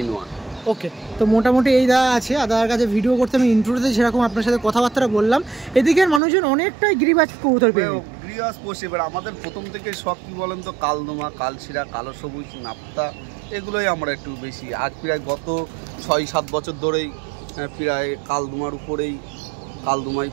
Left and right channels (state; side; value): drops out; left; at 6.2 s